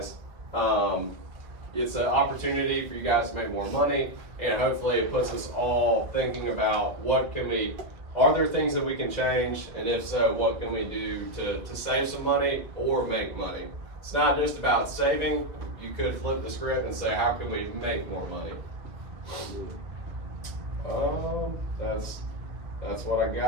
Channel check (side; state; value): left; late; 2.2 ms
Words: It's an opportunity for you guys to make more money, and hopefully it puts us all thinking about are there things that we can change, and if so, what can we do to save some money or make money? It's not just about saving. You could flip the script and say, how can we make more money? That's what I